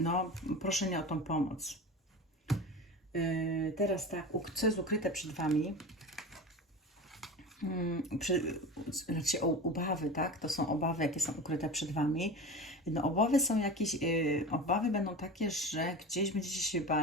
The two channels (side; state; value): both; normal; correlation 0.30